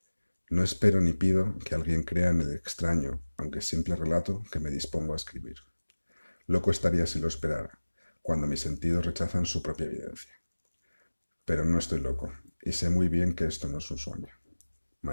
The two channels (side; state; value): both; inverted; correlation -1.00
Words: No espero ni pido que alguien crea en el extraño, aunque simple relato que me dispongo a escribir. Loco estaría si lo esperara, cuando mis sentidos rechazan su propia evidencia. Pero no estoy loco, y sé muy bien que esto no es un sueño.